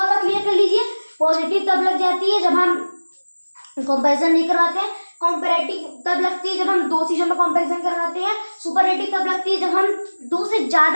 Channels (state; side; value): inverted; both; correlation -1.00